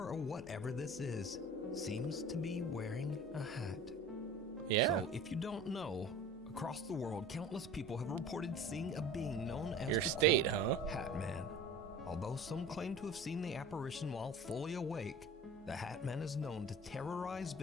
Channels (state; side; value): normal; both; correlation 0.40